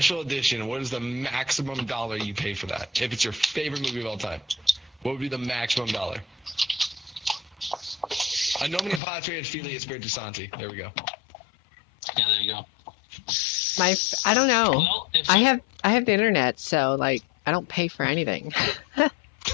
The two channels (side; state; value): right; drops out; at 9.0 s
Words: edition. What is the maximum dollar you pay for that? If it's your favorite movie of all time, what would be the maximum dollar? A nomine patria et filii Spiritu Santi. There we go. Yeah, there you go. I don't know. Well, if I have the internet, so like I don't pay for anything.